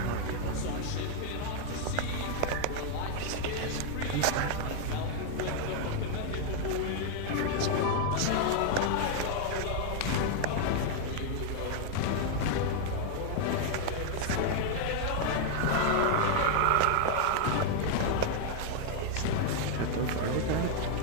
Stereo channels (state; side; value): different; both; correlation 0.00